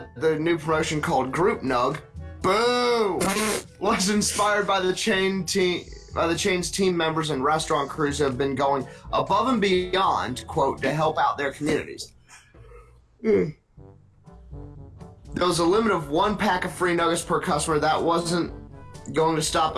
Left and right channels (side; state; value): both; identical; correlation 1.00